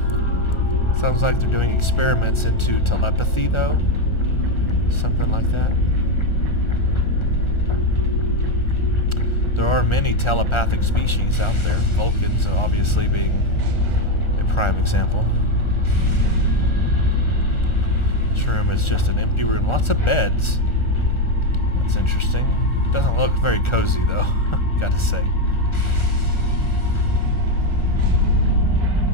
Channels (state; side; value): late; right; 1.4 ms